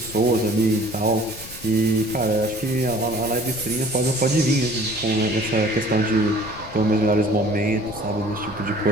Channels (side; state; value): left; noise; rumble, 16 dB below the sound